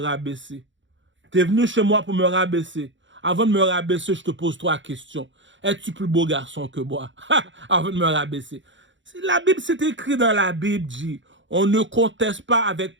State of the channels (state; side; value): late; left; 0.54 ms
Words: T'es venu chez moi pour me rabaisser. Avant de me rabaisser, je te pose 3 questions. Es-tu plus beau garçon que moi? Avant de me rabaisser. La Bible, c'est écrit dans la Bible, dit. On ne conteste pas avec